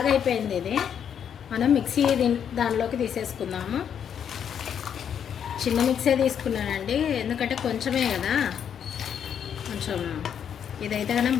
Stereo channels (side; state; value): right; quieter; 8.4 dB